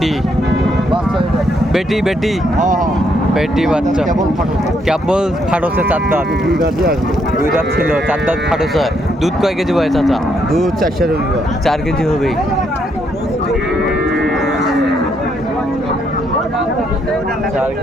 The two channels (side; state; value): both; normal; correlation 0.74